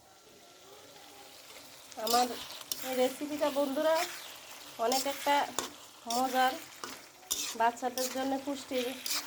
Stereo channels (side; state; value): both; identical; correlation 1.00